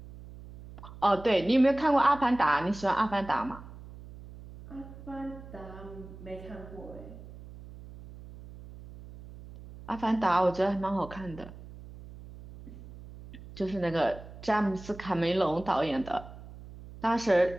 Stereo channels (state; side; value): noise; right; hum, 16 dB below the sound